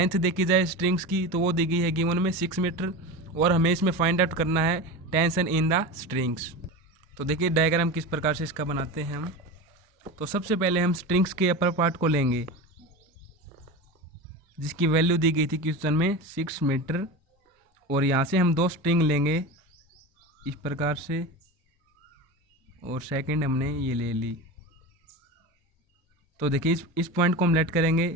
देखी जाए स्ट्रिंग्स की तो वो दी गई है गिवन में 6 मीटर और हमें इसमें फाइंड आउट करना है टेंशन इन द स्ट्रिंग्स। तो देखिए डायग्राम किस प्रकार से इसका बनाते हैं हम। तो सबसे पहले हम स्ट्रिंग्स के अपर पार्ट को लेंगे जिसकी वैल्यू दी गई थी क्वेश्चन में 6 मीटर और यहाँ से हम दो स्ट्रिंग लेंगे इस प्रकार से और सेकंड हमने ये ले ली। तो देखिए इस पॉइंट को हम लेट करेंगे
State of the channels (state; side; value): normal; both; correlation 0.26